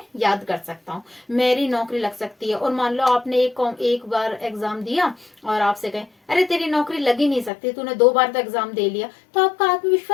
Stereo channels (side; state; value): right; drops out; at 7.5 s